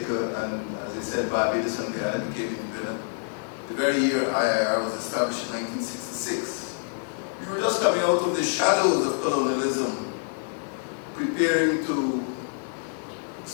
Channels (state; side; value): silent; right; 60 dB below the other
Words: and as I said, Barbados and Guyana became independent the very year IIR was established in 1966. We were just coming out of the shadows of colonialism, preparing to